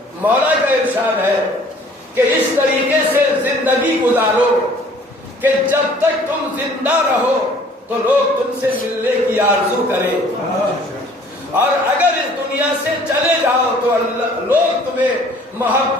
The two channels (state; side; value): normal; both; correlation 0.54